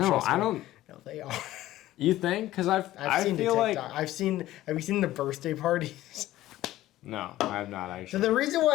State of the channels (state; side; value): quieter; right; 15.2 dB